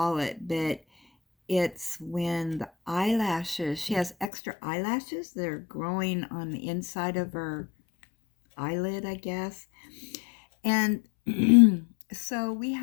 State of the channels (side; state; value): right; drops out; at 4.3 s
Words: it, but it's when the eyelashes, she has extra eyelashes that are growing on the inside of her eyelid, I guess. And so we